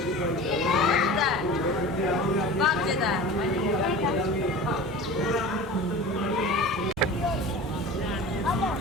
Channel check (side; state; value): both; normal; correlation 0.36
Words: बात देता है।